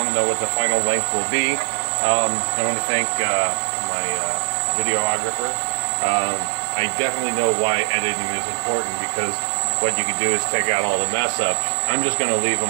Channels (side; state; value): left; silent; digital silence